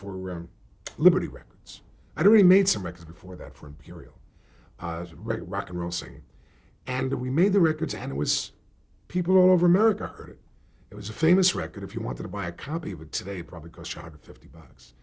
Liberty Records. I'd already made some records before that for Imperial, rock and roll singing. And we made the records, and it was, people all over America heard it. It was a famous record. If you wanted to buy a copy of it today, it probably cost you $150.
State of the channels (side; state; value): both; identical; correlation 1.00